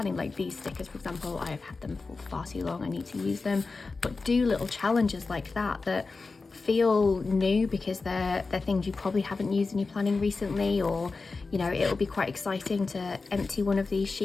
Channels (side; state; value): right; quieter; 4.0 dB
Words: Like these stickers, for example, I have had them for far too long, I need to use them. But do little challenges like that feel new, because they're things you probably haven't used in your planning recently, or, you know, it'll be quite exciting to empty one of these